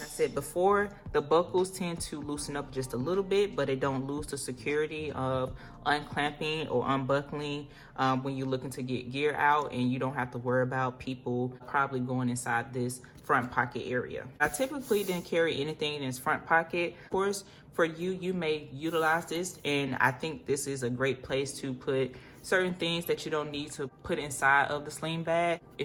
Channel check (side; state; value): both; identical; correlation 1.00